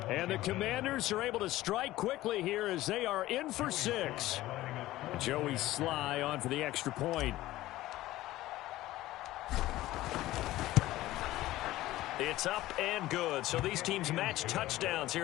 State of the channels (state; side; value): quieter; right; 16.3 dB